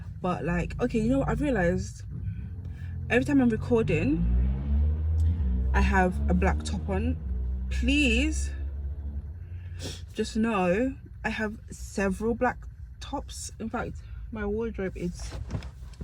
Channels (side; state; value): both; identical; correlation 1.00